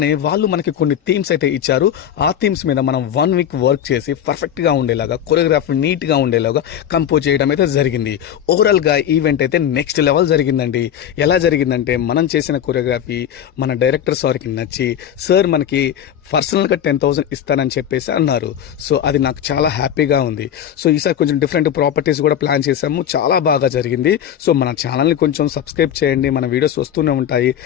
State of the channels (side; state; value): right; quieter; 9.8 dB